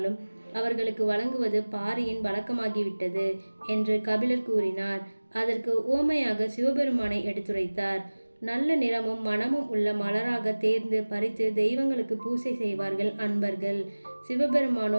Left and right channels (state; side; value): inverted; both; correlation -1.00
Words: அவர்களுக்கு வழங்குவது பாரியின் வழக்கமாகிவிட்டது என்று கபிலர் கூறினார். அதற்கு உவமையாக சிவபெருமானை எடுத்துரைத்தார். நல்ல நிறமும் மனமும் உள்ள மலராக தேர்ந்து பறித்து தெய்வங்களுக்கு பூசை செய்வார்கள் அன்பர்கள்.